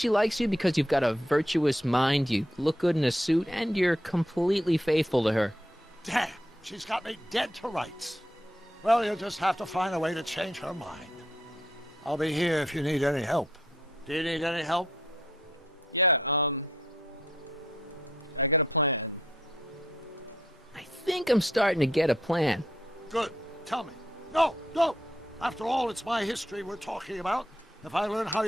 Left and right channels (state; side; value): normal; both; correlation 0.74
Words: likes you because you've got a virtuous mind, you look good in a suit, and you're completely faithful to her. Damn, she's got me dead to rights. Well, you'll just have to find a way to change her mind. I'll be here if you need any help. Do you need any help? I think I'm starting to get a plan. Good. Tell me. No, no! After all, it's my history we're talking about. If I learn how